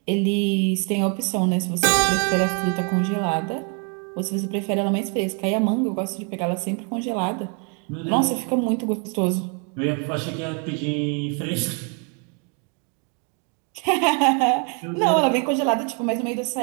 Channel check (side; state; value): left; quieter; 37.1 dB